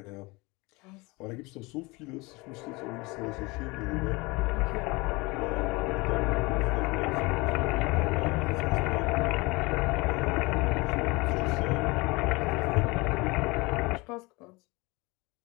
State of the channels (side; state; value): right; quieter; 24.8 dB